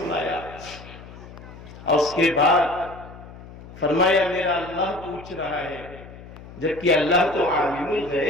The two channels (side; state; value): left; noise; hum, 17 dB below the sound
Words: اور اس کے بعد فرمایا میرا اللہ پوچھ رہا ہے، جبکہ اللہ تو عالم